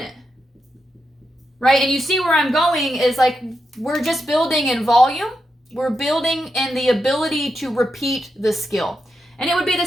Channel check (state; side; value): normal; both; correlation 0.86